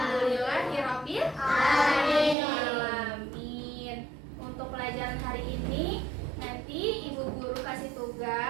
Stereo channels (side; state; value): left; drops out; at 2.4 s